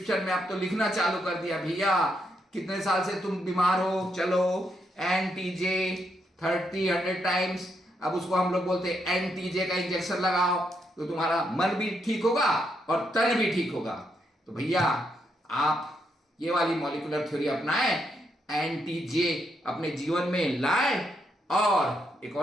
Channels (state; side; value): normal; both; correlation 0.79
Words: में अब तो लिखना चालू कर दिया, भैया कितने साल से तुम बीमार हो, चलो एनटीजे 30-100 टाइम्स। अब उसको हम लोग बोलते हैं एनटीजे का इंजेक्शन लगाओ, तो तुम्हारा मन भी ठीक होगा और तन भी ठीक होगा। तो भैया आप ये वाली मॉलिक्यूलर थ्योरी अपनाएं, एनटीजे अपने जीवन में लाएं। और एक